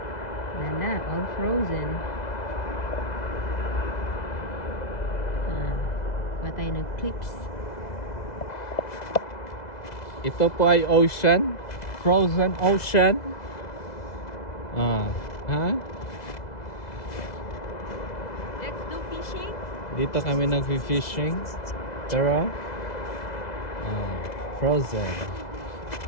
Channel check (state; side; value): late; right; 2.0 ms